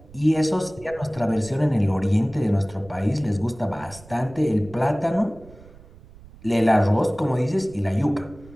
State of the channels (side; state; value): right; noise; rumble, 22 dB below the sound